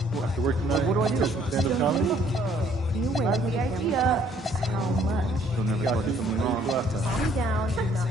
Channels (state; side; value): normal; both; correlation 0.62